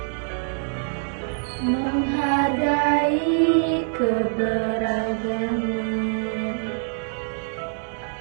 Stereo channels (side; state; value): left; silent; digital silence